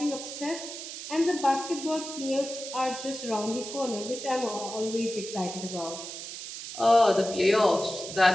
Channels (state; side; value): noise; right; hiss, 9 dB below the sound